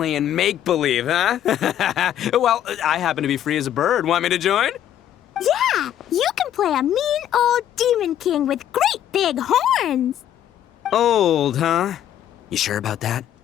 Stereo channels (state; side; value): quieter; right; 10.9 dB